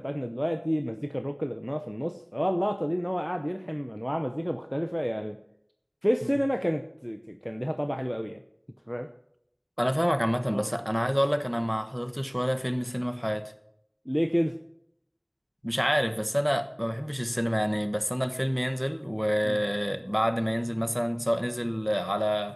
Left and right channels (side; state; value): both; identical; correlation 1.00